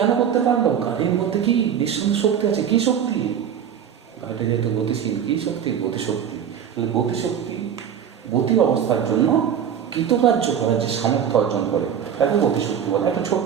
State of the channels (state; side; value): quieter; left; 8.5 dB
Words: করতে পারলো? গাড়ির মধ্যে কি নিঃসন্দেহে শক্তি আছে। কি শক্তি? গাড়িটা যেহেতু গতিশীল, কি শক্তি? গতিশক্তি। তাহলে গতিশক্তি গতি অবস্থার জন্য কৃতকার্য করার যে সামর্থ্য অর্জন করে তাকে গতিশক্তি বলে। একটা